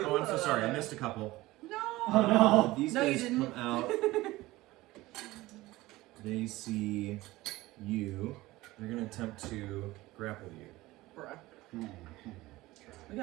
I'm so sorry. I missed a couple. No. Oh no. These No, you guys didn't. come out. They see you. They're going to attempt to grapple you. Bruh. We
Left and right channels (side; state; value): left; quieter; 18.7 dB